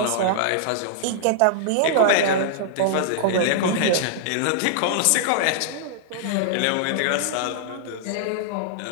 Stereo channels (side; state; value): both; different; correlation -0.01